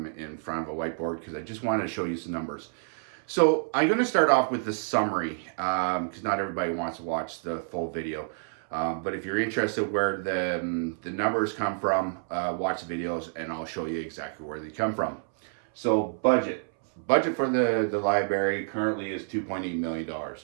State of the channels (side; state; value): left; silent; 59 dB below the other